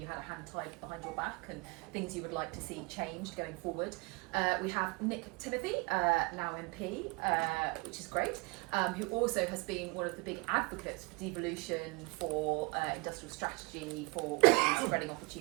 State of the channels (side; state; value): left; quieter; 26.8 dB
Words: had a hand tied behind your back and things you would like to see changed going forward. We have Nick Timothy, now MP, which is great, who also has been one of the big advocates for devolution, for industrial strategy, for spreading